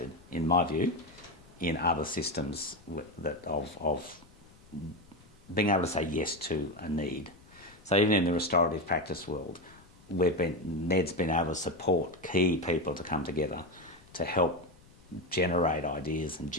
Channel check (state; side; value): noise; left; rumble, 26 dB below the sound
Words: in my view, in other systems of being able to say yes to a need. So even in the restorative practice world, NED's been able to support key people to come together to help generate ideas and